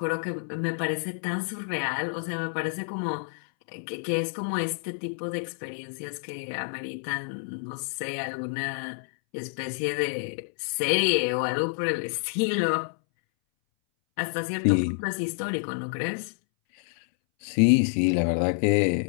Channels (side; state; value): right; silent; 59 dB below the other